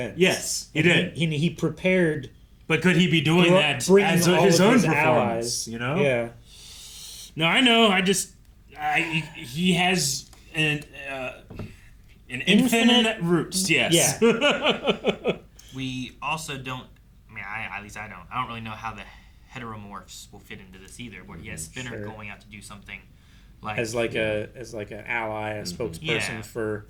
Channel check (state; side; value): identical; both; correlation 1.00